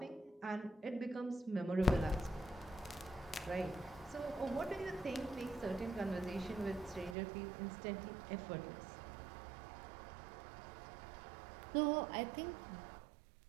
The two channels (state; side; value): drops out; left; at 7.2 s